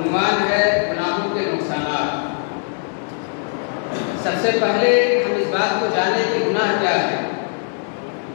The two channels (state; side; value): silent; right; 59 dB below the other